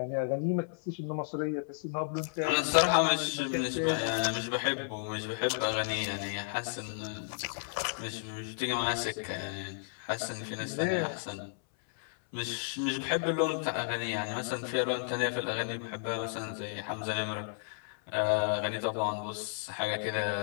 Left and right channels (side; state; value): right; silent; 56 dB below the other